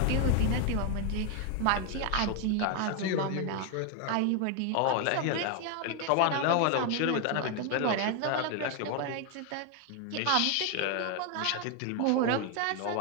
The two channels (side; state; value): both; different; correlation 0.01